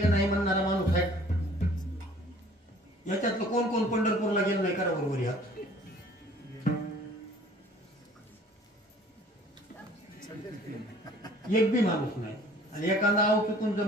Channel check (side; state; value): both; normal; correlation 0.52